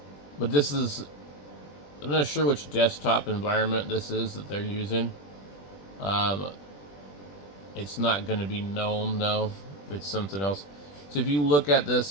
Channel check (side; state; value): right; late; 21 ms